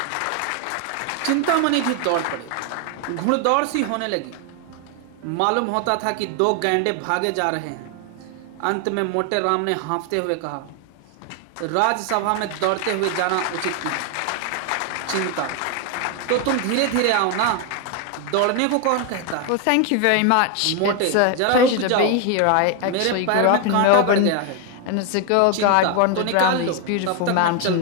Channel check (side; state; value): both; different; correlation 0.01